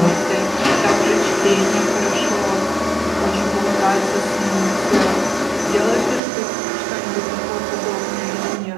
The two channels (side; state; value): left; drops out; at 6.2 s